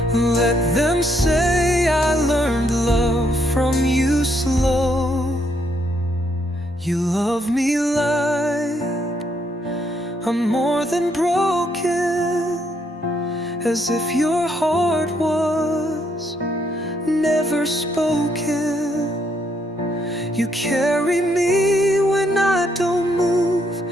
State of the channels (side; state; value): both; normal; correlation 0.73